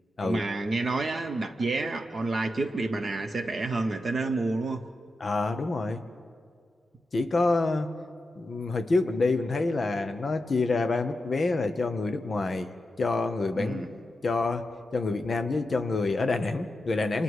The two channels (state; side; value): normal; both; correlation 0.89